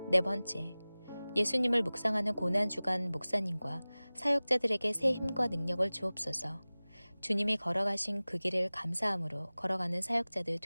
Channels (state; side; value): inverted; both; correlation -0.99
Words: 네 번째, 예수님을 묵상하는 고난주간 목사님과 사역자들에게 새 힘과 능력을 주옵소서. 주님이 걸어가신 그 길을 감사함으로 걸어가는 사역자들